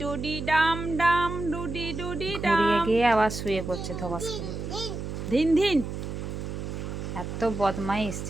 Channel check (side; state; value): right; noise; hum, 6 dB below the sound